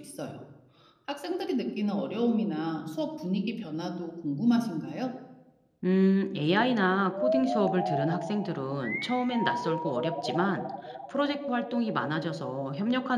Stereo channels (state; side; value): identical; both; correlation 1.00